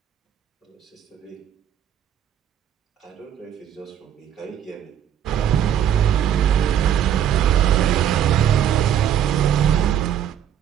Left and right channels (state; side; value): quieter; left; 9.9 dB